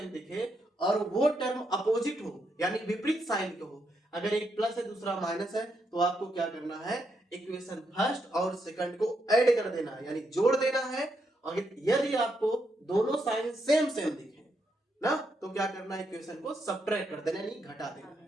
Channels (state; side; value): normal; both; correlation 0.80